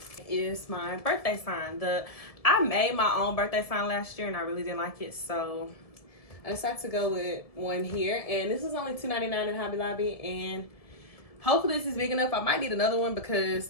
It is my birthday sign. I made my own birthday sign last year and I really didn't like it, so I decided to go with one here. And this was only $2.99 at Hobby Lobby, and hopefully this is big enough. I might need another one because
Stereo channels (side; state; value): right; late; 1.7 ms